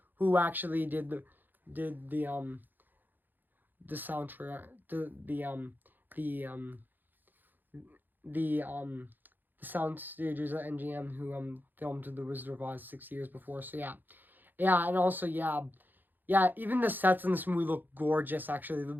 who actually did the soundtrack, the sound stages at NGM who filmed The Wizard of Oz 6 years before. So yeah, and also even the sets in this movie look gorgeous. Actually,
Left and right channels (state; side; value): late; left; 0.089 ms